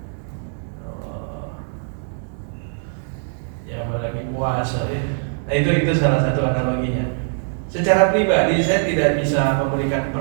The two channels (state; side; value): silent; left; digital silence